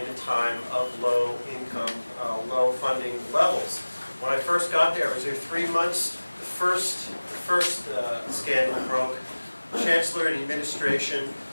a time of low income, low funding levels. When I first got there, I was there 3 months. The first scandal broke. Chancellor and administration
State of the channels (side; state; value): both; inverted; correlation -1.00